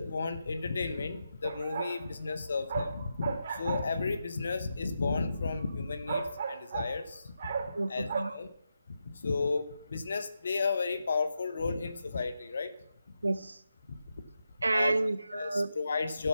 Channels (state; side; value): inverted; both; correlation -0.86